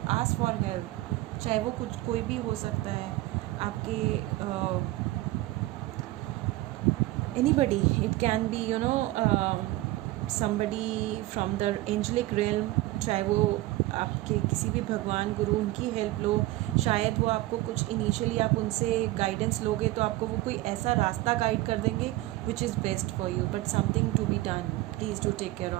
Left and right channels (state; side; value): quieter; left; 17.9 dB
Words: ask for help. चाहे वो कुछ कोई भी हो सकता है, आपके anybody, it can be you know somebody from the angelic realm, चाहे वो आपके किसी भी भगवान गुरु, उनकी हेल्प लो। शायद वो आपको कुछ इनिशियली आप उनसे गाइडेंस लोगे तो आपको वो कोई ऐसा रास्ता गाइड कर देंगे which is best for you, but something to be done. Please do take care